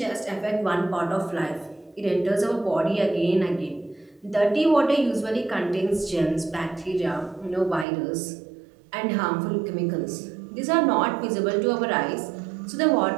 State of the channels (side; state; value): left; drops out; at 7.9 s